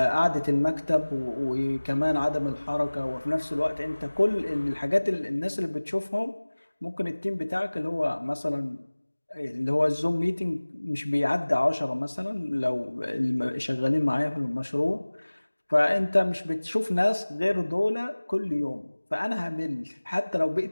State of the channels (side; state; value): both; inverted; correlation -1.00